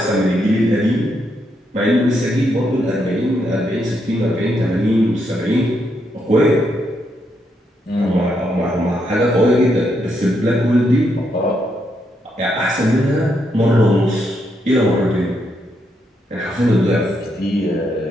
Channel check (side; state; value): both; normal; correlation 0.79